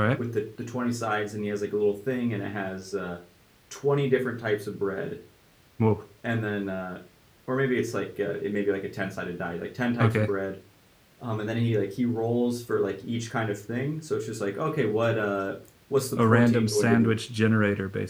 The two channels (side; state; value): both; identical; correlation 1.00